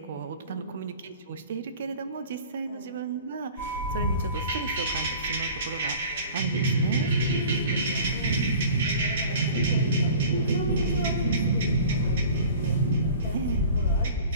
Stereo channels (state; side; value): inverted; both; correlation -0.44